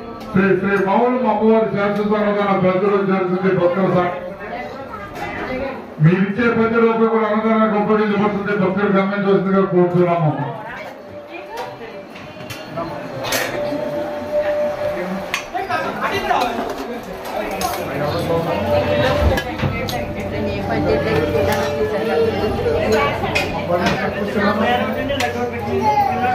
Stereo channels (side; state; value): both; identical; correlation 1.00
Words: శ్రీ శ్రీ మౌనం అమ్మవారి శాశ్వత అన్నదాన ప్రజలు జరుగుతుంది. భక్తుల మీరిచ్చే ₹10 కూడా అన్నదానానికి ఉపయోగించబడుతుంది. భక్తులు గమనించవలసిందిగా కోరుతున్నాము.